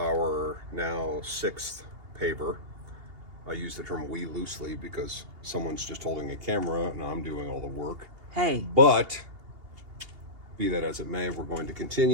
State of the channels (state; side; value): late; left; 2.8 ms